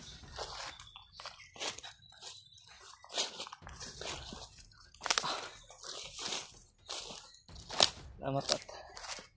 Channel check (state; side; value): identical; both; correlation 1.00